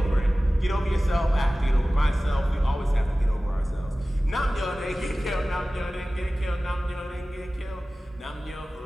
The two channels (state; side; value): normal; both; correlation 0.97